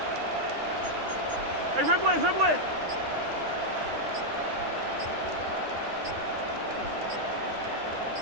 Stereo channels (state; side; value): late; left; 9.7 ms